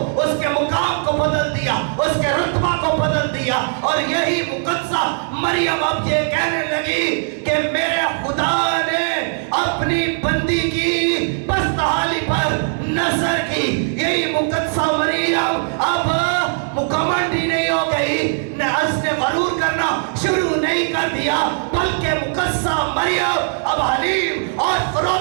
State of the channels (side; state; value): left; silent; 66 dB below the other